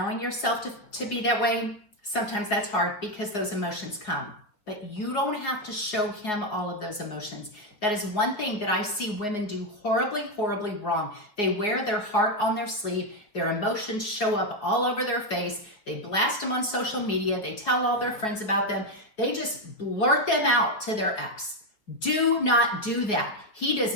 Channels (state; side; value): late; right; 4.9 ms